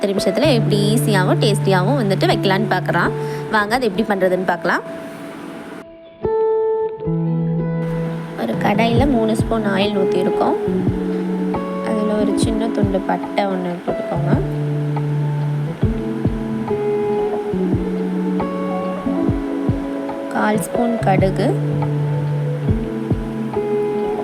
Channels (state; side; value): identical; both; correlation 1.00